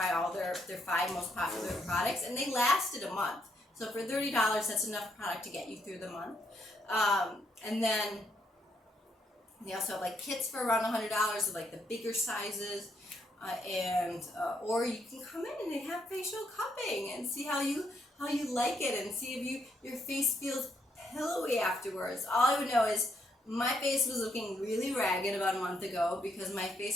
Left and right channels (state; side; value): normal; both; correlation 0.76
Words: all their 5 most popular products, and they lasted a month. So for $30, that's enough product to get you through the month. And then they also have like kits for around $100 of like the bigger sizes, or you can come in and they have facial cupping and see how you like it, and see if your face feels pillowy afterwards. All I would know is my face was looking really ragged about a month ago because my